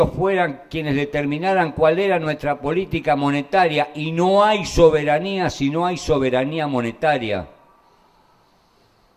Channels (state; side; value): identical; both; correlation 1.00